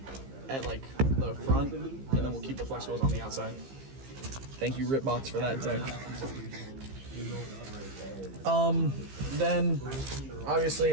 like the front, and then we'll keep the flex wheels on the outside. Thank you, Ripbots, for that tech. Then obviously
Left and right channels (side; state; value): left; late; 15 ms